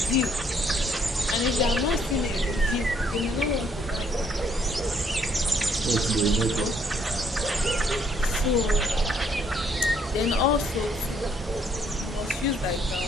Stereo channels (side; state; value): both; normal; correlation 0.67